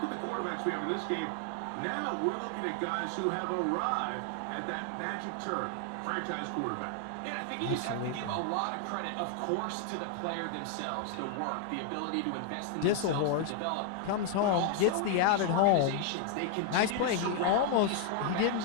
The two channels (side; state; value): both; different; correlation 0.00